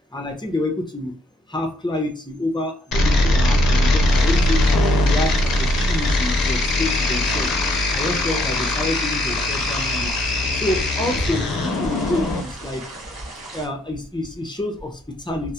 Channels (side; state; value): both; normal; correlation 0.70